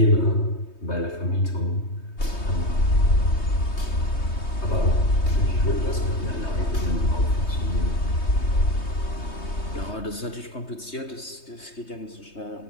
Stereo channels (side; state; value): right; late; 3.2 ms